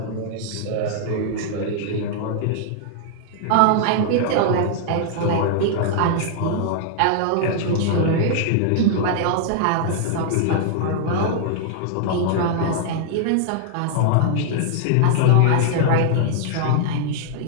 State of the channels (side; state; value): both; different; correlation -0.01